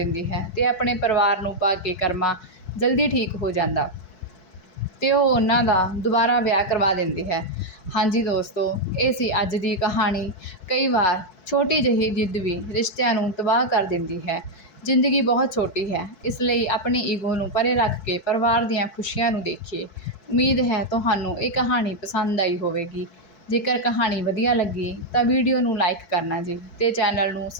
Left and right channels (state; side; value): late; right; 4.6 ms